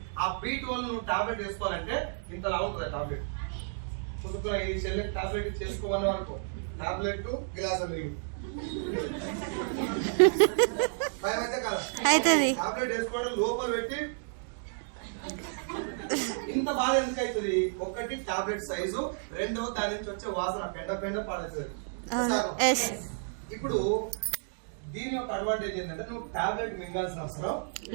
ఆ B12 నువ్వు టాబ్లెట్ వేసుకోవాలంటే ఇంతలా ఉంటుంది ఆ టాబ్లెట్. చూసుకున్న ఈ చెల్లెకి టాబ్లెట్ చేసుకోమని అనుకో, టాబ్లెట్ గిలాస్ నీళ్ళు భయం అయితే కదా. టాబ్లెట్ వేసుకోవడం లోపల పెట్టి ఇంత బాధ ఎందుకు అవుతుంది? ఒకటి టాబ్లెట్ సైజు, రెండో దాని నుంచి వచ్చే వాసన పెండ పాడేస్తుంది. ఇప్పుడు దీని యొక్క అడ్వాంటేజ్ ఏంటంటే నువ్వు టాబ్లెట్ మింగాల్సిన అవసరం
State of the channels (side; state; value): left; silent; digital silence